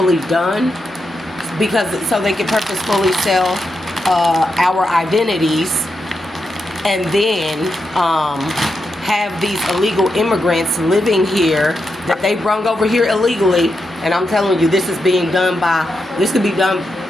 done so they could purposefully sell our identities, and then have these illegal immigrants living here that they brung over here illegally. And I'm telling you, this could be done,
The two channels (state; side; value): normal; both; correlation 0.86